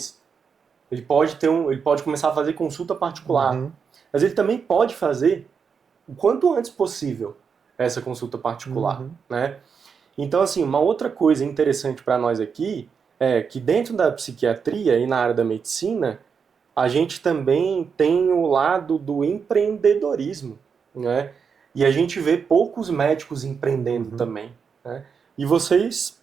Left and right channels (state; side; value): quieter; left; 6.2 dB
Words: Ele pode começar a fazer consulta particular. Mas ele também pode fazer o quanto antes possível essa consulta particular, né? Então, assim, uma outra coisa interessante para nós aqui é que dentro da psiquiatria e na área da medicina, a gente também tem o lado do empreendedorismo, né? E a gente vê poucos médicos empreendendo também, né? E você,